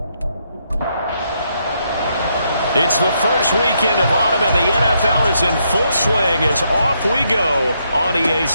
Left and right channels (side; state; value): both; inverted; correlation -0.77